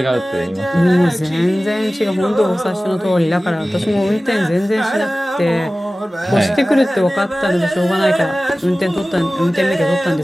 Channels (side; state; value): both; normal; correlation 0.97